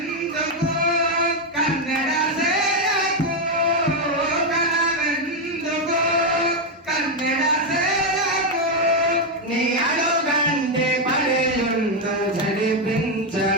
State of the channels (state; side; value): normal; both; correlation 0.04